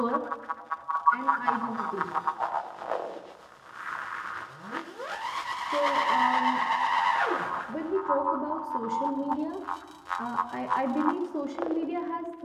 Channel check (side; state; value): both; identical; correlation 1.00